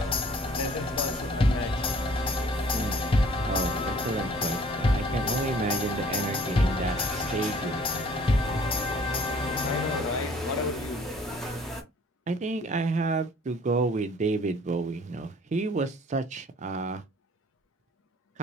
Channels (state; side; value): normal; both; correlation 0.55